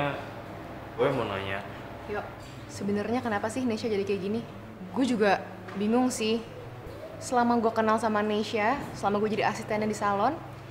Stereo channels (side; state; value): both; identical; correlation 1.00